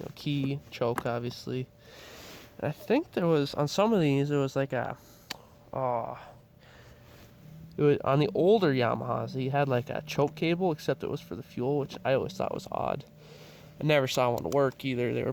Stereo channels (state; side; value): identical; both; correlation 1.00